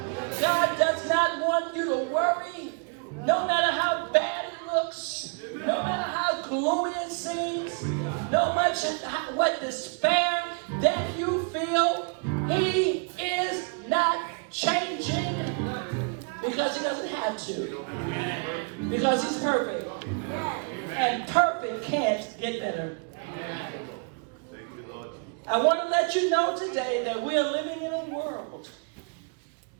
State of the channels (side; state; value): left; quieter; 39.0 dB